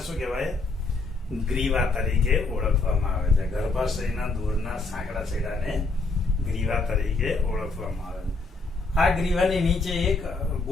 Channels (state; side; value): quieter; right; 3.7 dB